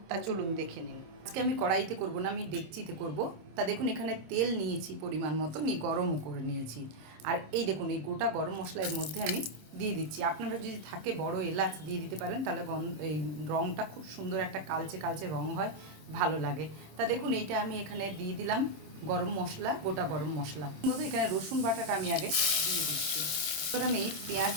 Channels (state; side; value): late; left; 26 ms